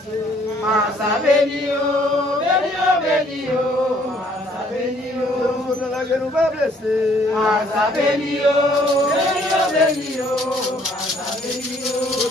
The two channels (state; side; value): normal; both; correlation 0.62